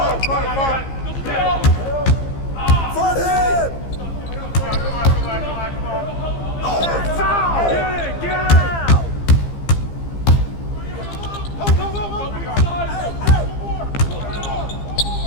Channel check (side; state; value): right; late; 15 ms